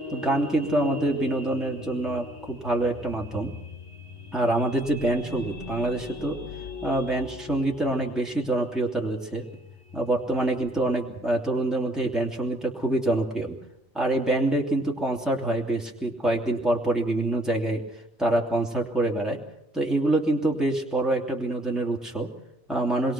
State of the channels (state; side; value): normal; both; correlation 0.63